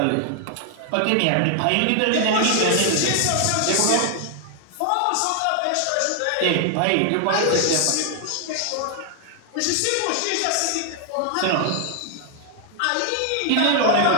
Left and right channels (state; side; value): different; both; correlation 0.00